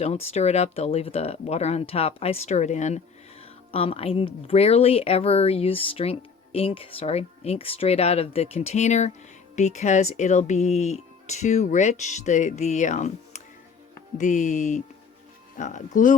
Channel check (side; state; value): right; quieter; 5.6 dB